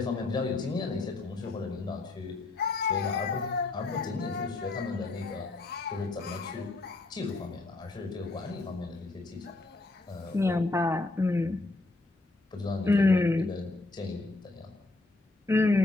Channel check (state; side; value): quieter; right; 3.2 dB